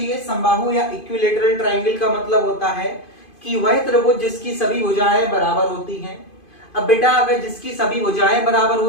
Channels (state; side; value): late; right; 2.5 ms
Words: समबाहु या इक्विलेटरल ट्राइंगल का मतलब होता है कि वह त्रिभुज जिसकी सभी भुजाएं बराबर होती हैं। अब बेटा अगर जिसकी सभी भुजाएं बराबर